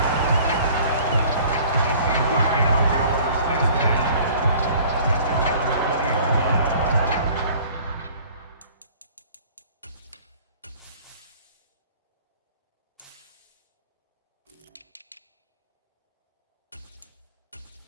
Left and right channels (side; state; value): both; inverted; correlation -0.50